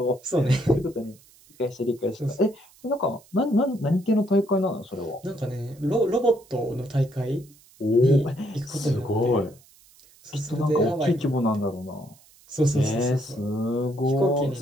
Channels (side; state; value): right; noise; hiss, 27 dB below the sound